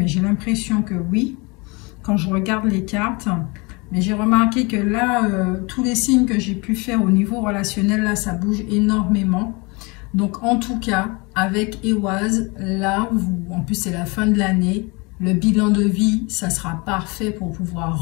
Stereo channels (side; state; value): right; quieter; 27.9 dB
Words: j'ai l'impression que oui, quand je regarde les cartes. Mais j'ai remarqué que là, tous les signes que j'ai pu faire au niveau relationnel, là, ça bouge énormément. Donc, en tout cas, avec Eoaz, là, en plus, c'est la fin de l'année. Le bilan de vie, ça sera parfait pour